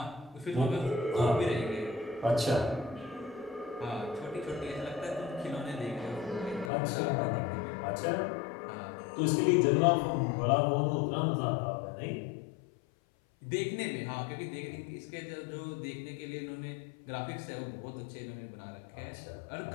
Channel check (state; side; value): drops out; right; at 6.7 s